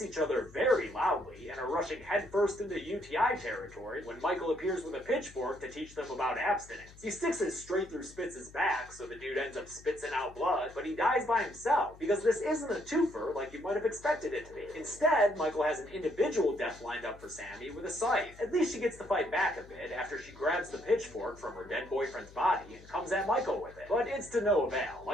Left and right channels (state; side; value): noise; left; hum, 21 dB below the sound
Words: other very loudly and are rushing headfirst into UTI territory when Michael appears with a pitchfork to teach them about abstinence. He sticks it straight through Spitz's back, so the dude ends up spitting out blood, but he dies by himself, because this isn't a twofer like you might have expected it to be. Instead, Michael has an individual death lined up for Sammy with a scythe. At least she gets to fight back a bit after she grabs the pitchfork from her dead boyfriend's body and comes at Michael with it. But it's to no avail.